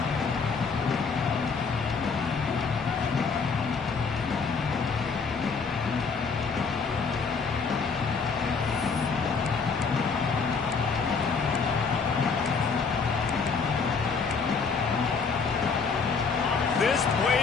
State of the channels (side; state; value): right; quieter; 5.1 dB